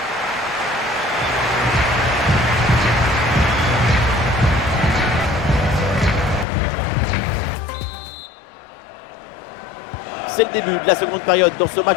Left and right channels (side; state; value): right; drops out; at 6.5 s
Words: C'est le début de la seconde période dans ce